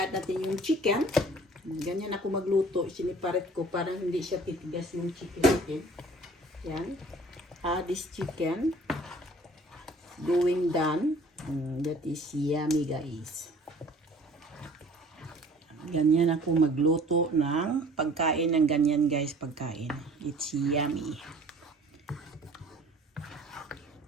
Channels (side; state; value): both; normal; correlation 0.50